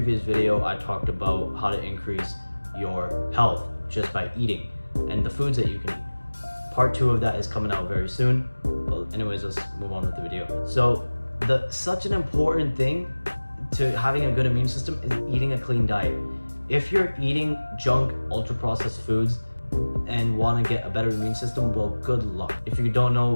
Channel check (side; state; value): both; inverted; correlation -1.00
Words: video I talked about how to increase your health just by eating and the foods that you can eat. Part 2 of that is coming out very soon. Well, anyways, let's move on with the video. So such an important thing to having a good immune system is eating a clean diet. If you're eating junk, ultra-processed foods and want to get a better immune system, well, good luck. If you don't know